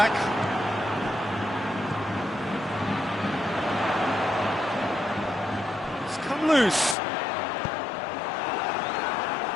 It's come loose.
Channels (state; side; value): drops out; right; at 7.0 s